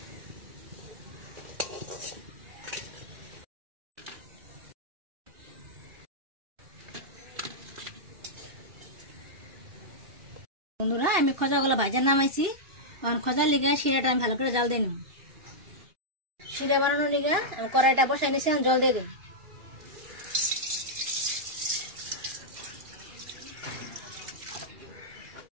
বন্ধুরা, আমি খোঁজাগুলো ভাজা নামাইছি। এখন খোঁজার লিগা শিরাটা আমি ভালো করে জাল দিয়ে নিব। শিরা বানানোর লিগা আমি কড়াইটা বসাই নিয়েছি, জল দিয়ে দিই।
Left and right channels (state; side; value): late; left; 2.4 ms